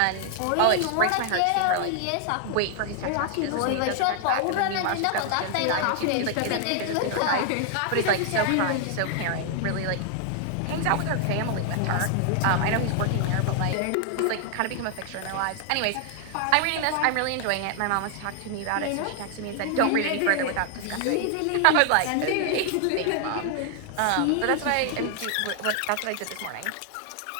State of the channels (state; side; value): different; both; correlation 0.00